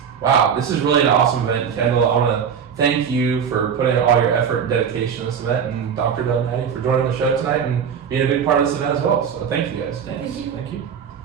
wow, this is really an awesome event. Kendall, I want to thank you for putting in all your effort and dedication in this event, and Dr. Dunn and Addy for joining the show tonight and being a big part of this event as well. So thank you guys. Thank you. Thank you.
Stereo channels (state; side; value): quieter; left; 7.4 dB